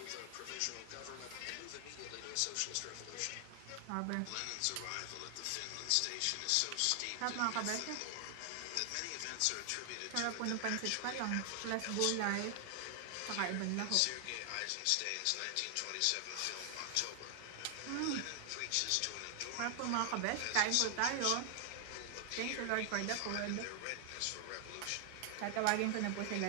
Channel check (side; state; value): both; different; correlation 0.00